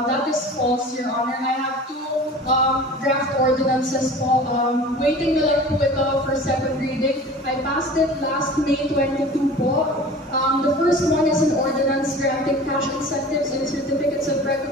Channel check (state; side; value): normal; both; correlation 0.40